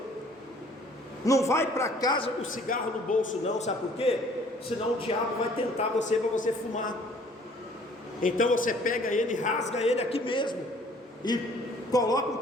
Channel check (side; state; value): both; normal; correlation 0.56